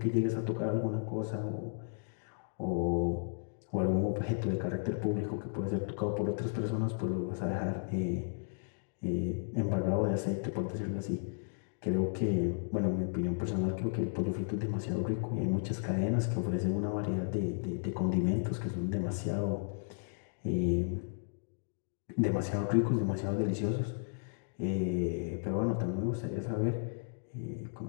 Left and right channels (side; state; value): right; silent; digital silence